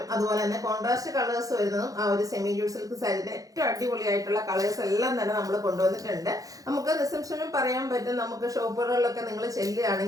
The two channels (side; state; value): left; late; 0.17 ms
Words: അതുപോലെ തന്നെ കോൺട്രാസ്റ്റ് കളേഴ്സ് വരുന്നതും ആ ഒരു സെമി ജൂട്ട് സിൽക്ക് സാരിയുടെ ഏറ്റവും അടിപൊളിയായിട്ടുള്ള കളേഴ്സ് എല്ലാം തന്നെ നമ്മൾ കൊണ്ടുവന്നിട്ടുണ്ട്. നമുക്ക് റിസപ്ഷനും പറയാൻ പറ്റും, നമുക്ക് ഷോപ്പുകളിലൊക്കെ നിങ്ങൾ